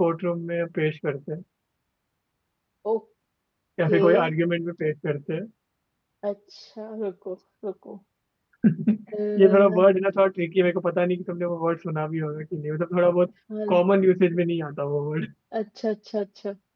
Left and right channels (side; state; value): both; identical; correlation 1.00